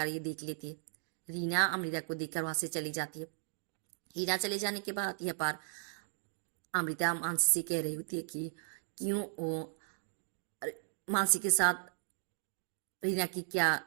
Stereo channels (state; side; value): silent; left; digital silence